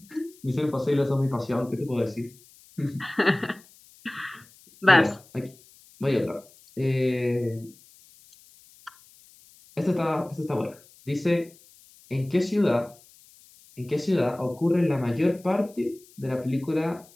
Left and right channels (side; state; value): left; noise; hiss, 26 dB below the sound